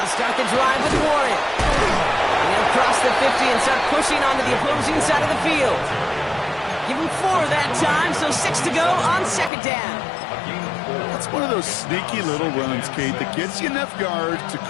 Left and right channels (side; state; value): right; drops out; at 9.5 s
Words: start the drive with Warren. And they'll cross the 50 and start pushing onto the opposing side of the field. Give him 4 that time, so 6 to go on second down. That's one of those sneaky little runs, Kate, that gets you enough yards to